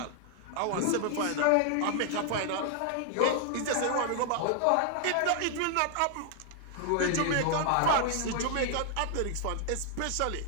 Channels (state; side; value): different; both; correlation 0.00